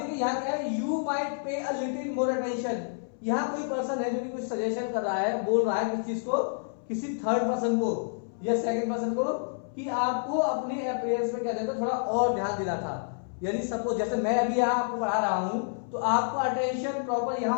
यहां क्या है, you might pay a little more attention. यहां कोई पर्सन है जो कि कुछ सजेशन कर रहा है, बोल रहा है किस चीज को, किसी थर्ड पर्सन को या सेकंड पर्सन को, कि आपको अपने अपीयरेंस में क्या देता थोड़ा और ध्यान देना था। यानी सपोज जैसे मैं अभी यहाँ आपको पढ़ा रहा हूं, तो आपको अटेंशन प्रॉपर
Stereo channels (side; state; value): right; silent; 59 dB below the other